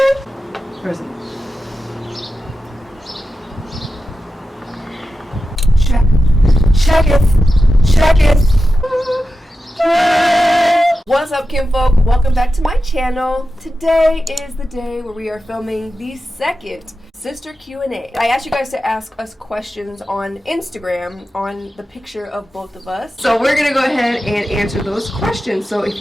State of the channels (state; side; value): normal; both; correlation 0.92